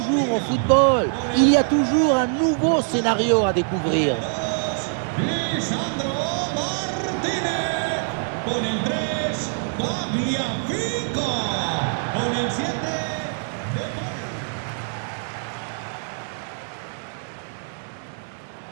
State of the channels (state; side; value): silent; left; 62 dB below the other